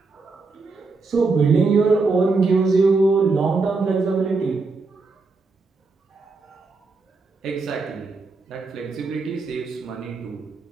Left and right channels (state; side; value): quieter; left; 4.0 dB